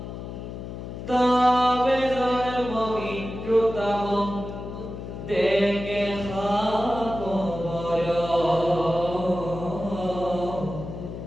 তবে জন্ম মৃত্যুতম দেখে খবর,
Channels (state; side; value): noise; left; hum, 9 dB below the sound